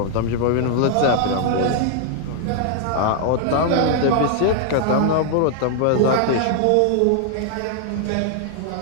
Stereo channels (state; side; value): different; both; correlation 0.00